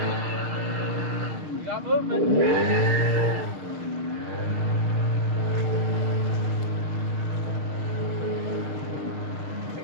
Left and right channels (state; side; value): late; left; 6.5 ms